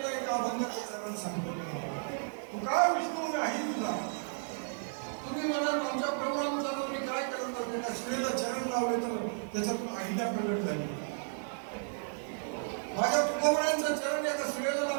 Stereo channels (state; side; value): silent; left; digital silence